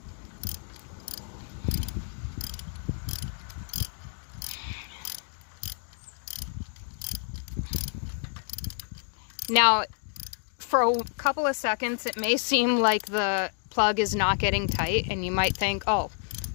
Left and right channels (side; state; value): right; silent; 58 dB below the other